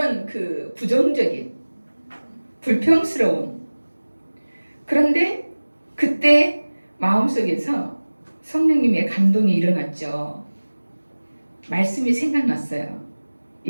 그 부정적인 불평스러운. 그런데 그때 마음속에서 성령님의 감동이 일어났죠. 말씀이 생각났어요.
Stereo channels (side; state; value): both; inverted; correlation -1.00